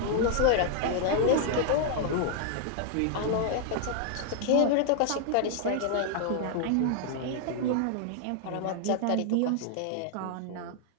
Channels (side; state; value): both; different; correlation 0.00